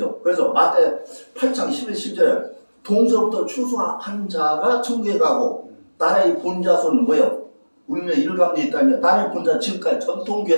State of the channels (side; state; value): both; inverted; correlation -1.00